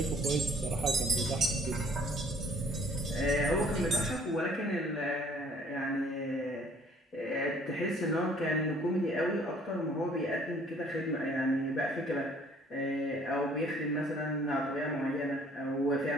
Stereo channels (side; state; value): both; normal; correlation 0.58